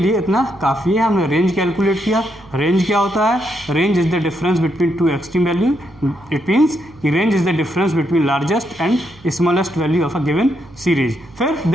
इतना काफ़ी है, हमने रेंज कैलकुलेट किया। रेंज क्या होता है, range is the difference between two extreme value, it means कि range is the difference between largest and smallest value of a given series. फिर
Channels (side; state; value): right; noise; hum, 24 dB below the sound